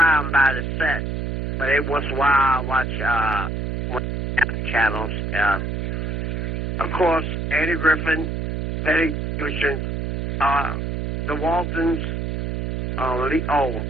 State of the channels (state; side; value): noise; right; hum, 2 dB below the sound